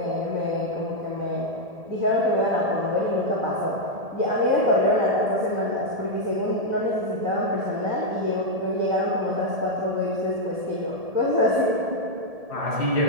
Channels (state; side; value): late; left; 1.7 ms